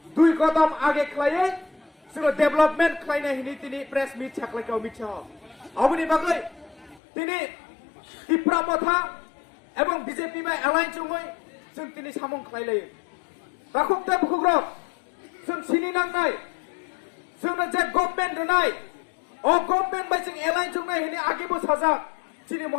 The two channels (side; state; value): right; drops out; at 7.0 s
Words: দুই কদম আগে খাইয়ে সুরো ডেভেলপমেন্ট খাইনা হিনি তিনি প্রেস মিট ছাকলাইকা অমিত শাহ অবনি বাগৈ তিনি ত্রিপুরা মথা এবং বিজেপি বা এলাইন চুঙৈ जों তিনি সামং খাইলাই রাখুকতে বুকুগ্রক जों সিনি নাংনাই जोंनो जे गभर्नमेंट रनाय ओ गभर्नमेंट बाय जों एलाइन चुंनाय हिनि आगेबो साजा चिनि